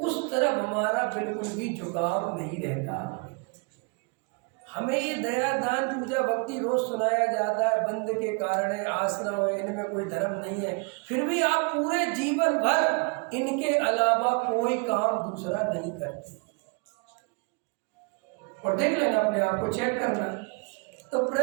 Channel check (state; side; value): quieter; left; 32.5 dB